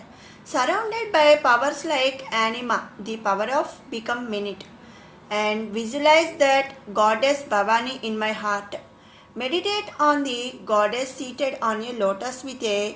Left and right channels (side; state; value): both; identical; correlation 1.00